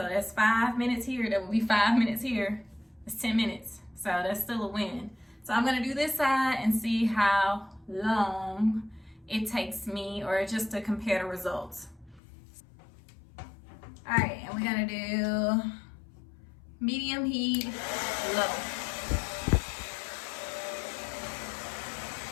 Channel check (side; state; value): right; drops out; at 12.2 s